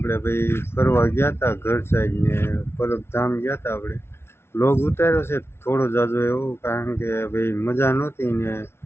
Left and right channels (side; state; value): right; late; 0.12 ms